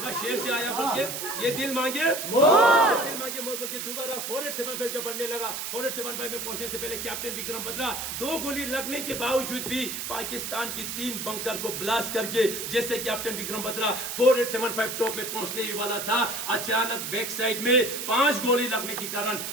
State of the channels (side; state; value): right; noise; hiss, 5 dB below the sound